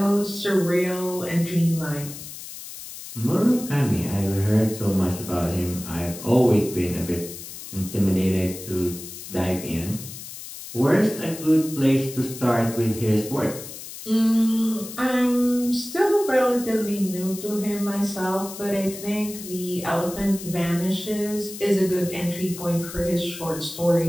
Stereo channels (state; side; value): noise; left; hiss, 12 dB below the sound